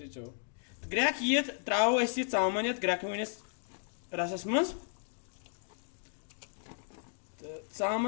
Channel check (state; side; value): silent; right; digital silence